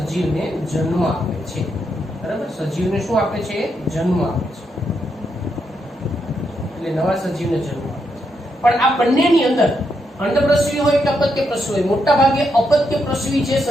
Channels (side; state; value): both; normal; correlation 0.80